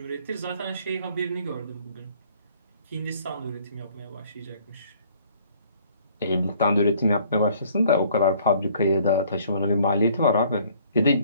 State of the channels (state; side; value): inverted; both; correlation -0.59